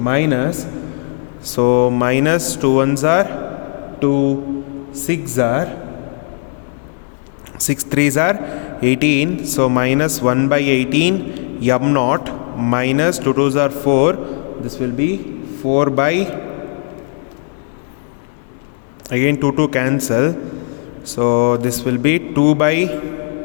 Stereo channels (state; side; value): silent; right; digital silence